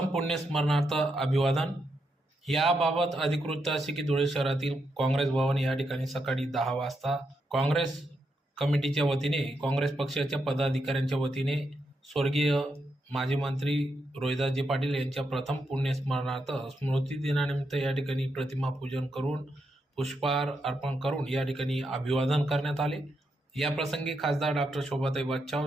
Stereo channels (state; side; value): normal; both; correlation 0.82